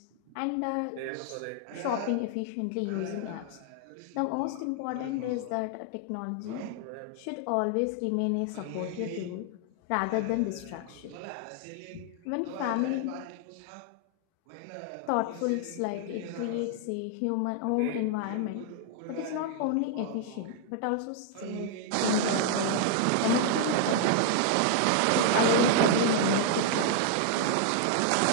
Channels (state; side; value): different; both; correlation 0.00